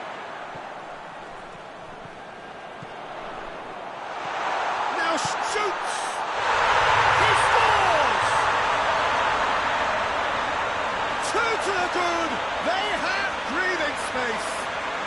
Now shoots! He scores! 2 to the good! They have breathing space!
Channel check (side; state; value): both; identical; correlation 1.00